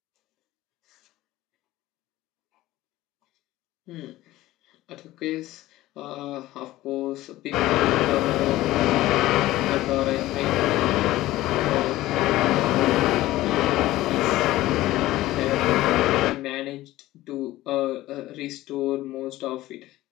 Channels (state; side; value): quieter; right; 16.5 dB